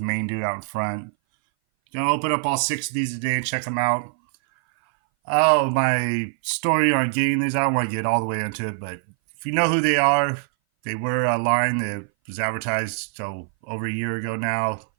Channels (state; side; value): silent; left; 59 dB below the other